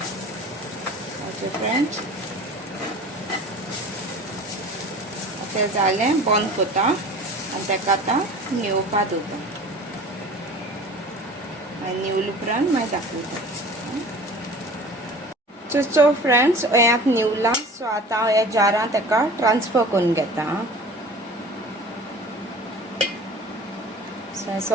ओके फ्रेंड्स, तें जालें बंद कोता आनी ताका आतां निवोवपा दोता. निवले उपरांत मागीर दाखयता. सो फ्रेंड्स हें निवला. सो आतां हांव ह्या जारांत ताका ट्रान्सफर करून घेता. सो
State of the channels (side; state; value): both; normal; correlation 0.42